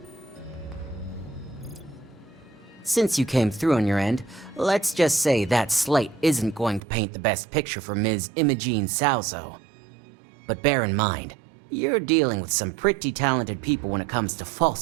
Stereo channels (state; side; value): drops out; left; at 6.8 s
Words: Since you came through on your end, let's just say that slate isn't going to paint the best picture for Ms. Imogene Salzo. But bear in mind, you're dealing with some pretty talented people when it comes to